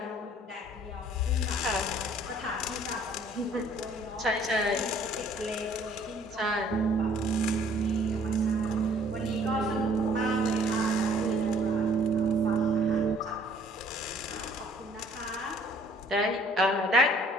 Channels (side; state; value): both; normal; correlation 0.58